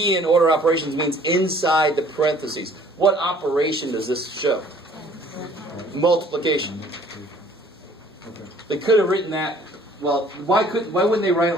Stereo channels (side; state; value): both; normal; correlation 0.55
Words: in order operations means inside the parentheses. What operation does this show? Multiplication. Okay. They could have written that. Well, why wouldn't they write